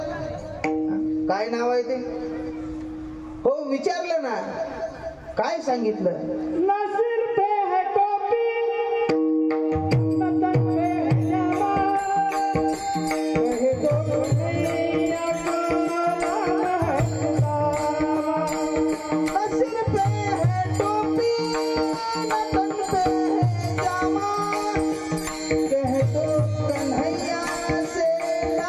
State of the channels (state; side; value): identical; both; correlation 1.00